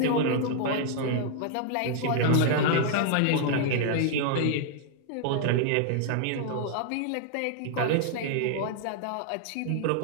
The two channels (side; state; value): both; different; correlation 0.00